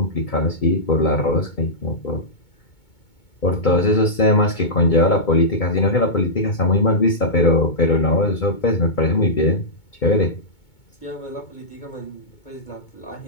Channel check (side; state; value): right; late; 2.2 ms